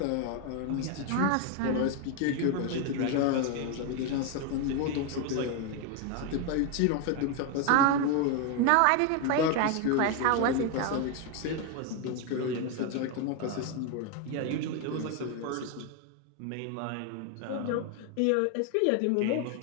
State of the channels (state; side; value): different; both; correlation 0.01